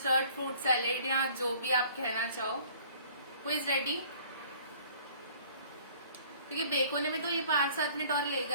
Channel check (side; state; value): both; inverted; correlation -0.54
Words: फ्रूट सैलेड या जो भी आप कहना चाहो। Who is ready? क्योंकि बेक होने में तो ये 5-7 मिनट और